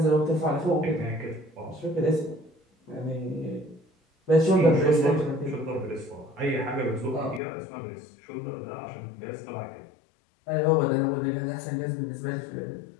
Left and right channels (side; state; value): right; drops out; at 7.4 s